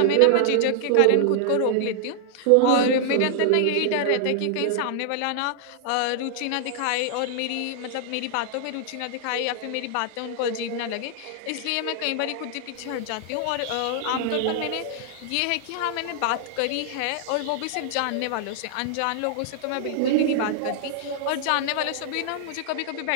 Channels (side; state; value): both; different; correlation -0.01